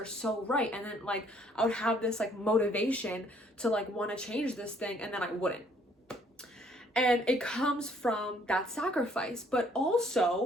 so right. And then like I would have this like motivation to like want to change this thing, and then I wouldn't. And it comes from that sacrifice, but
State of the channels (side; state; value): both; normal; correlation 0.63